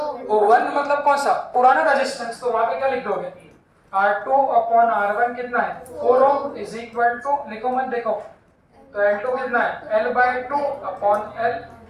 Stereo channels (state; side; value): identical; both; correlation 1.00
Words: मतलब कौन सा, पुराना रेजिस्टेंस। तो वहां पे क्या लिख दोगे, R2 अपॉन R1 कितना है, 4 ओम, इज इक्वल टू, लिखो मत देखो, तो L2 कितना है, L/2 अपॉन L